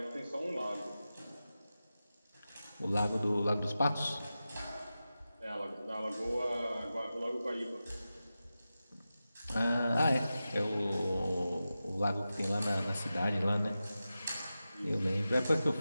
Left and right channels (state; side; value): inverted; both; correlation -0.93